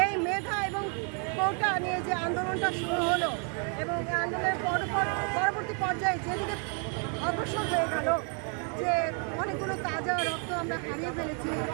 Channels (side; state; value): left; quieter; 38.2 dB